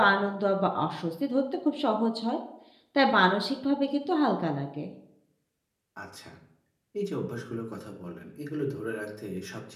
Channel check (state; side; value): identical; both; correlation 1.00